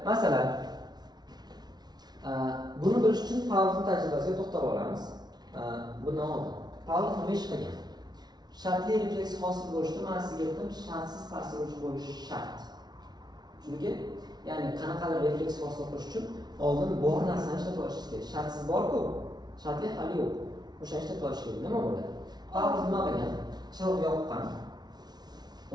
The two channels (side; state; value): left; late; 0.19 ms